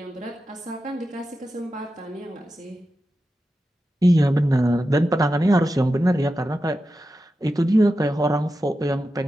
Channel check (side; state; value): both; normal; correlation 0.91